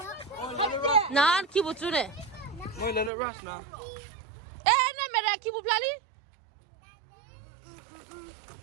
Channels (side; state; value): left; drops out; at 3.1 s